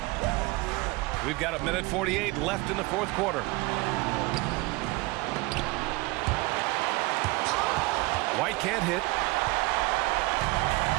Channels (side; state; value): left; quieter; 22.6 dB